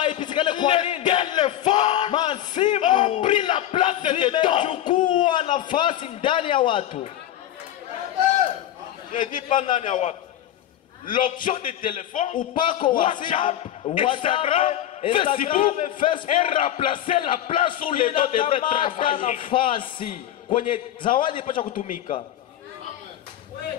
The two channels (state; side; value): quieter; right; 12.0 dB